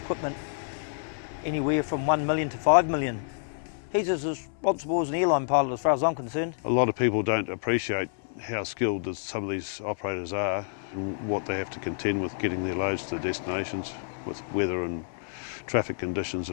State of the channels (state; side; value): silent; right; 59 dB below the other